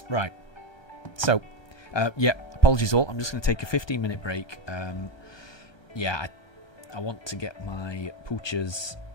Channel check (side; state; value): right; late; 1.2 ms